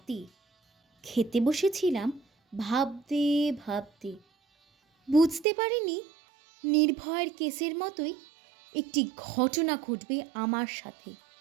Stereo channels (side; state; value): left; drops out; at 5.5 s